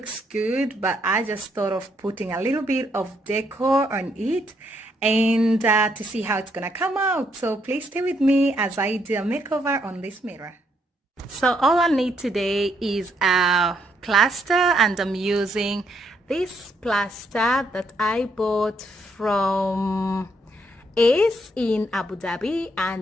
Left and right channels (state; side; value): normal; both; correlation 0.74